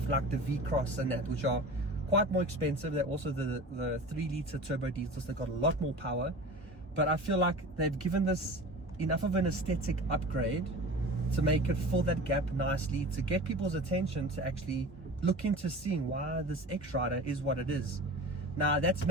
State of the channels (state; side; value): normal; both; correlation 0.36